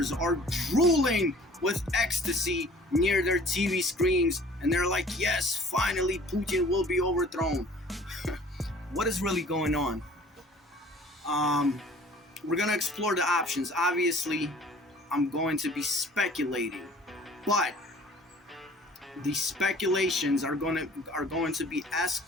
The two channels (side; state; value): both; normal; correlation 0.50